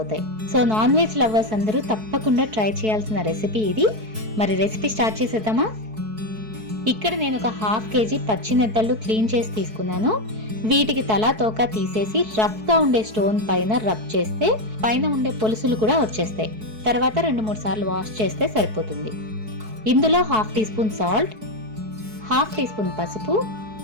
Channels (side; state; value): left; late; 4.6 ms